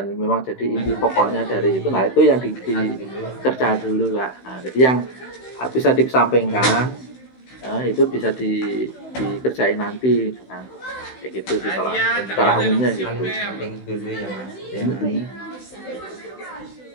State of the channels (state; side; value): late; right; 16 ms